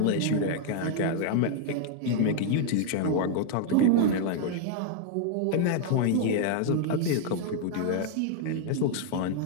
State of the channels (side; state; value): both; different; correlation 0.00